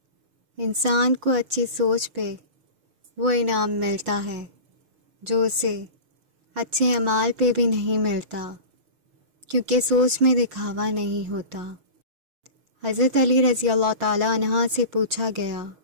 انسان کو اچھی سوچ پہ وہ انعام ملتا ہے جو اسے اچھے اعمال پہ بھی نہیں ملتا، کیونکہ سوچ میں دکھاوا نہیں ہوتا۔ حضرت علی رضی اللہ تعالیٰ عنہ سے پوچھا گیا،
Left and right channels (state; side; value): late; left; 6.4 ms